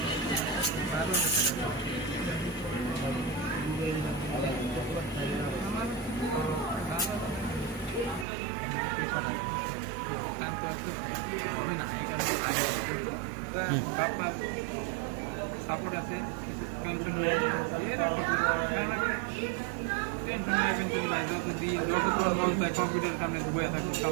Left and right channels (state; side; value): drops out; left; at 8.2 s